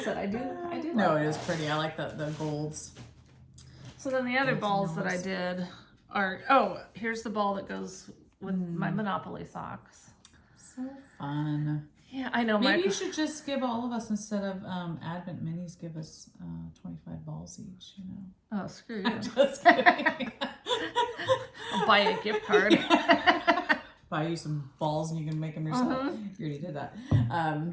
said, I do No, like it is pretty. I like the golds. So then the other balls that I did are, here's the ball that goes with my Monopoly socks. So fun. Yeah, I know. Maybe you should just give all of us, instead of Advent minis, give us 25 balls each, you know. Oh, screw you. Just kidding. I'll buy you a gift card. Buy you some balls and you can make them yourself. You already did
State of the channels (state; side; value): identical; both; correlation 1.00